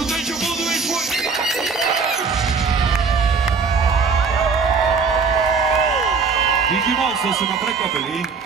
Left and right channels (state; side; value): quieter; left; 5.0 dB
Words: ten, čo buduješ svoj. Díky moc, to ste ma prekvapili.